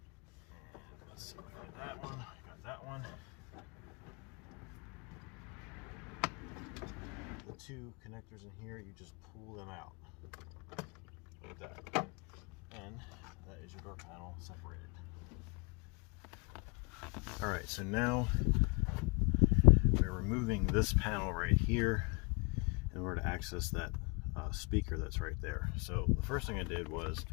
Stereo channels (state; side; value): quieter; right; 32.1 dB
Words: And let's see if I got that one. I got that one. The 2 connectors in here, you just pull them out like that, and that is your door panel separated. All right, so now we're removing this panel right here in order to access that speaker that's right there. So the first thing I did was